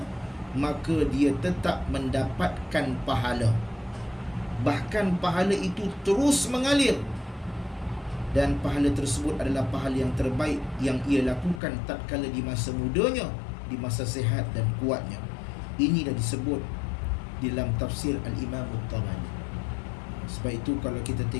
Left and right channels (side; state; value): right; drops out; at 11.6 s